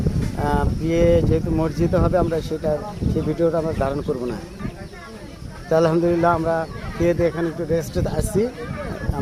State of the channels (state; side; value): identical; both; correlation 1.00